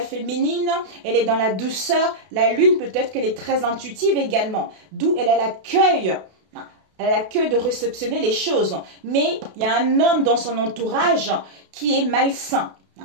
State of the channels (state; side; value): late; left; 32 ms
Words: féminine, elle est dans la douceur, la lune peut-être qu'elle est très intuitive également, d'où elle a l'accueil. Elle a l'accueil de réceptionner les choses. Mais il y a un homme dans son entourage qui est malsain.